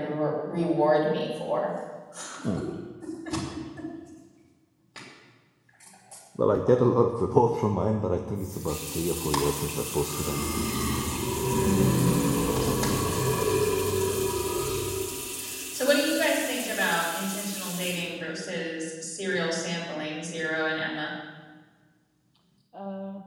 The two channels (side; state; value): both; identical; correlation 1.00